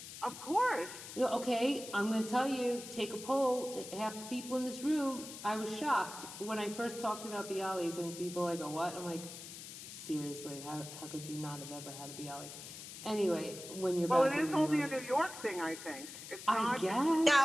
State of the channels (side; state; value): left; noise; hiss, 12 dB below the sound